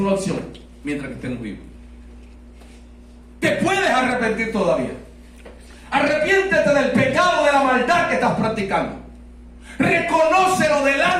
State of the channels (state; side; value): identical; both; correlation 1.00